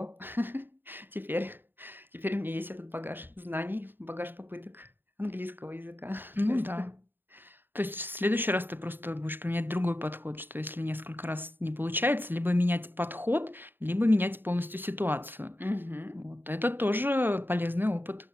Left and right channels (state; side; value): late; left; 0.095 ms